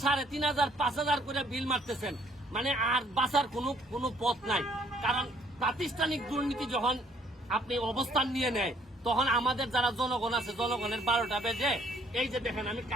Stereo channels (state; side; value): normal; both; correlation 0.63